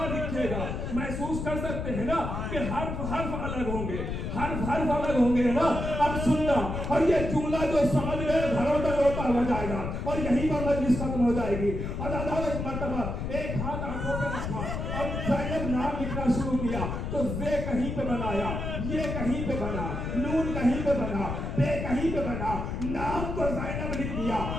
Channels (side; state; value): left; noise; rumble, 4 dB below the sound